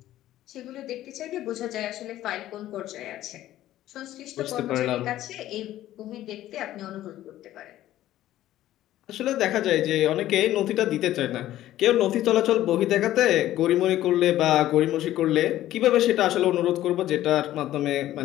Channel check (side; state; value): right; quieter; 13.8 dB